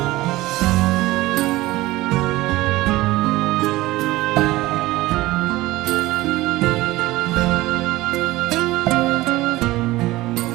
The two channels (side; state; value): left; quieter; 18.4 dB